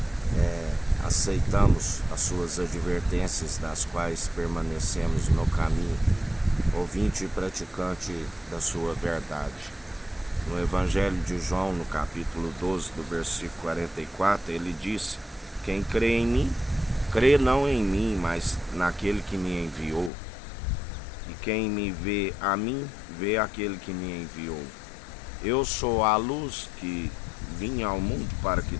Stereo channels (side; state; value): right; drops out; at 20.1 s